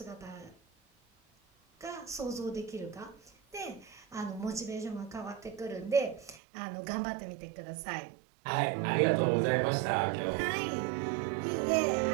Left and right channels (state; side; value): drops out; left; at 6.4 s